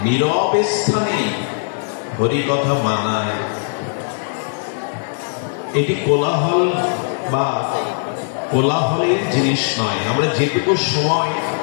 নীরব স্থানে হরিকথা মানায়। এটি কোলাহল বা কোলাহলের জিনিস নয়। আমরা যেটুকু সময়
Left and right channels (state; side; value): silent; right; digital silence